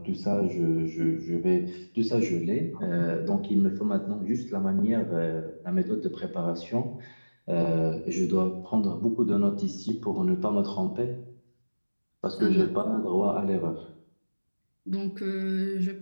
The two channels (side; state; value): both; inverted; correlation -1.00